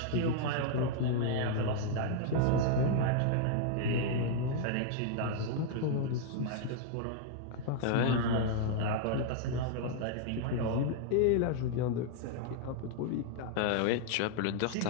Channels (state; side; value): different; both; correlation -0.01